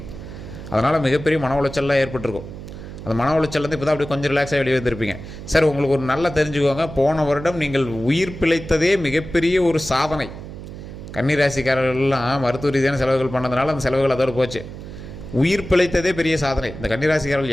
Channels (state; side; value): noise; right; hum, 12 dB below the sound